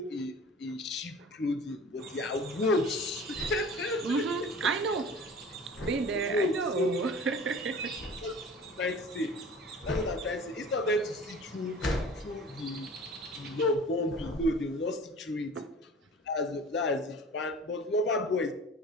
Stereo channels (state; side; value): normal; both; correlation 0.42